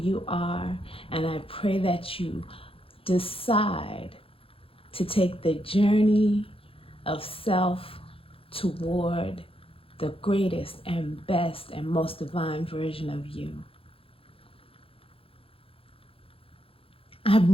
are, and I pray that you decide to take the journey of self toward the greatest and best and most divine version of you.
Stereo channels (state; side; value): late; right; 0.27 ms